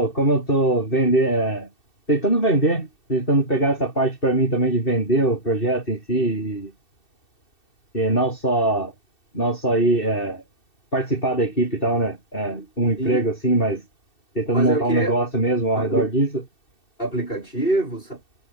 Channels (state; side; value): late; right; 2.7 ms